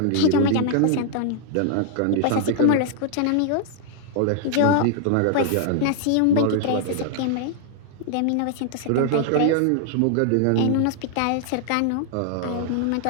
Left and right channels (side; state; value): both; different; correlation 0.00